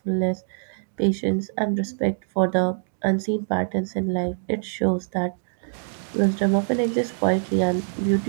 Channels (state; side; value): silent; left; digital silence